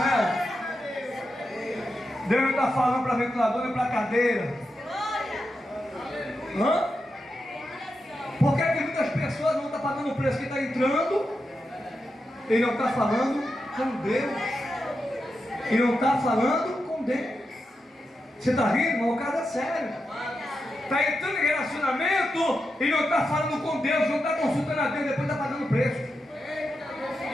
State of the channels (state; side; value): normal; both; correlation 0.88